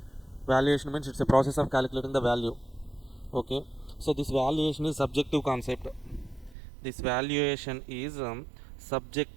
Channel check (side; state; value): left; drops out; at 6.6 s